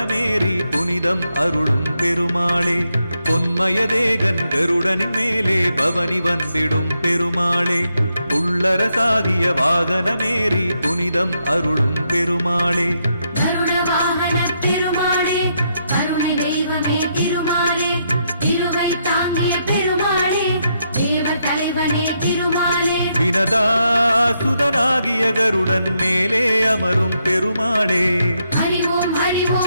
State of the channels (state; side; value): inverted; both; correlation -0.79